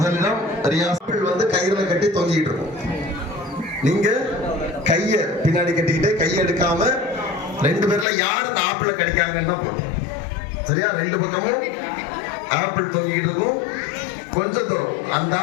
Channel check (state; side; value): drops out; right; at 8.1 s